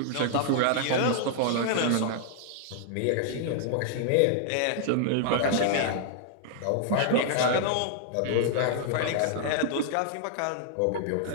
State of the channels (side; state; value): both; different; correlation -0.01